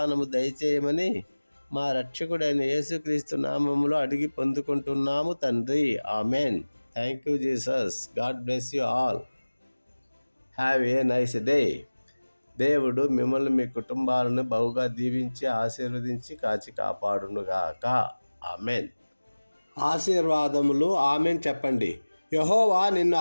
దయచేయమని మా రక్షకుడైన యేసుక్రీస్తు నామములో అడిగి పొందుకుంటున్నాము తండ్రి. Amen. Thank you Jesus. God bless you all. Have a nice day. దేవుడు మిమ్మల్ని, మీ కుటుంబాలను బహుగా దీవించి ఆశీర్వదించి కాచి కాపాడునుగాక. ఆమెన్. ఆశీర్వాదములు. ఆమెన్ చెప్పండి. యెహోవా నిన్ను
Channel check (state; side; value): inverted; both; correlation -1.00